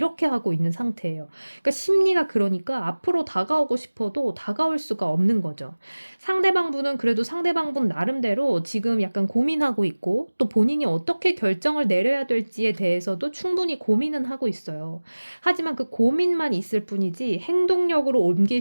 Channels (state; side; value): inverted; both; correlation -1.00